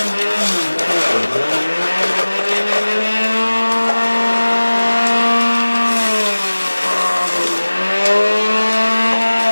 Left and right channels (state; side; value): inverted; both; correlation -1.00